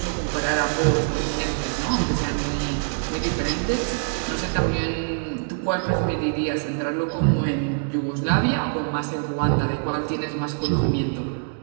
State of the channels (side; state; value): left; silent; digital silence